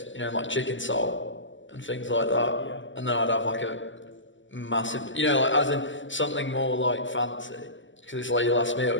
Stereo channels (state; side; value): late; right; 0.55 ms